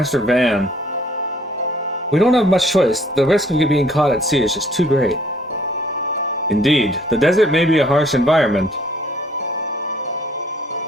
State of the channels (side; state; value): both; normal; correlation 0.60